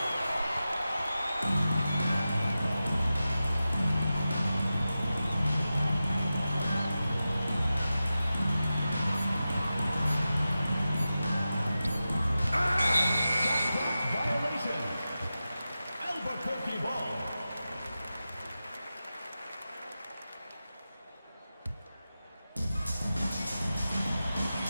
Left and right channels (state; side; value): inverted; both; correlation -0.93